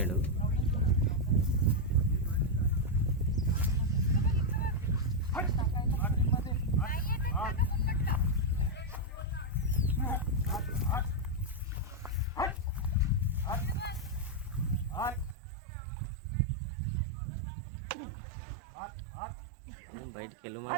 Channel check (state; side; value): drops out; left; at 15.4 s